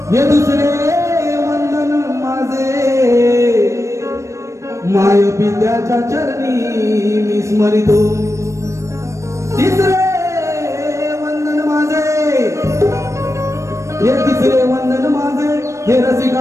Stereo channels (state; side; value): late; left; 0.15 ms